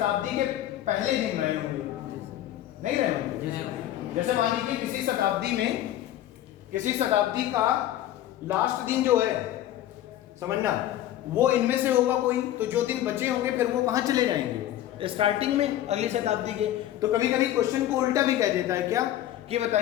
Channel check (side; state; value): right; quieter; 12.8 dB